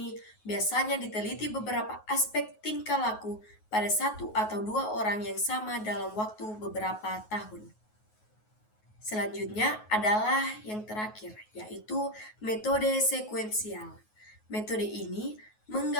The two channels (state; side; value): late; right; 9.4 ms